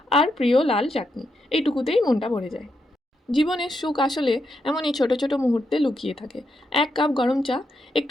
আর প্রিয় লাল চাটনি, এইটুকুতেই মনটা ভরে যায়। জীবনের সুখ আসলে এমনই ছোট ছোট মুহূর্তে লুকিয়ে থাকে। এক কাপ গরম চা,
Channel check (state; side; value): normal; both; correlation 0.82